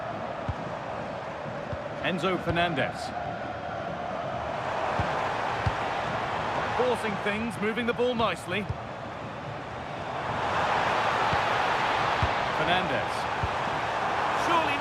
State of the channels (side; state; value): both; identical; correlation 1.00